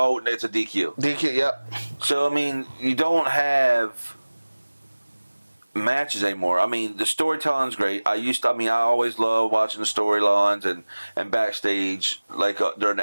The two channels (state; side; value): inverted; both; correlation -1.00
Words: it's a DQ. DQ, yep. So, I mean, you don't have matches anymore. I mean, the storytelling's great. I always loved watching the storylines and backstage, like during